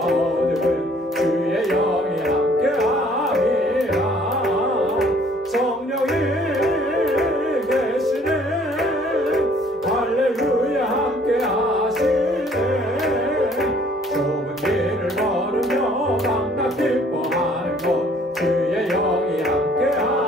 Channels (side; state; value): both; normal; correlation 0.58